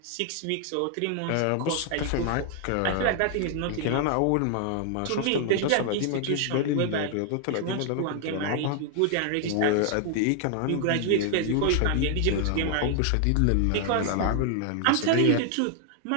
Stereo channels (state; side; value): different; both; correlation 0.00